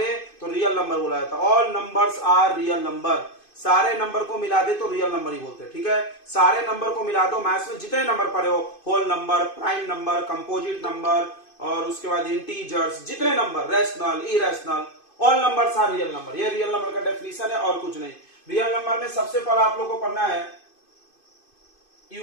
तो रियल नंबर बोला जाता है। All numbers are real number, सारे नंबर को मिला दे तो रियल नंबर ही बोलते हैं, ठीक है। सारे नंबर को मिला दो, मैथ्स में जितने नंबर पढ़े हो, whole number, prime number, composite number और उसके बाद इंटीजर्स, जितने number, rational, irrational, all numbers are real number. ये रियल नंबर का डेफिनेशन है और कुछ नहीं। रियल नंबर में सबसे पहले आप लोगों को पढ़ना है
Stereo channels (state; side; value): late; right; 2.5 ms